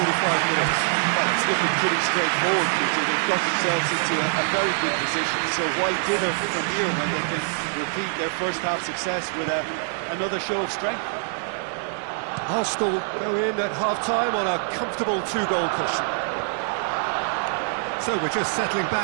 minutes? Well, it's looking pretty straightforward, Peter. They've got themselves into a very good position, so why dither from here when they can repeat their first half success with another show of strength? Arsenal go in at half-time on a comfortable two-goal cushion. So we're just settling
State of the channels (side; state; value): left; silent; digital silence